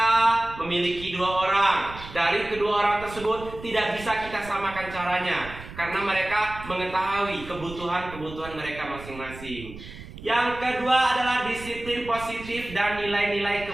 memiliki 2 orang. Dari kedua orang tersebut tidak bisa kita samakan caranya, karena mereka mengetahui kebutuhan mereka masing-masing. Yang kedua adalah disiplin positif dan nilai-nilai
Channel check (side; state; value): right; noise; rumble, 14 dB below the sound